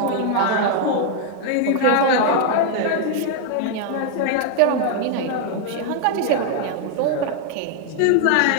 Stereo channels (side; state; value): both; different; correlation 0.00